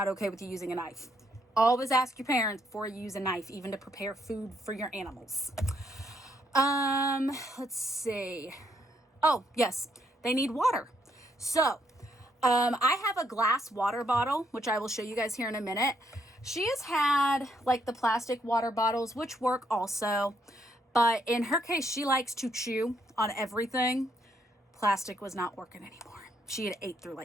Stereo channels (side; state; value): both; normal; correlation 0.74